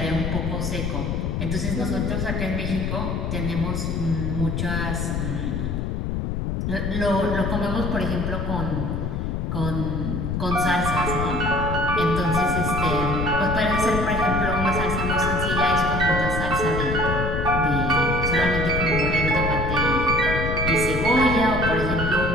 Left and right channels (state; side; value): noise; left; rumble, 1 dB below the sound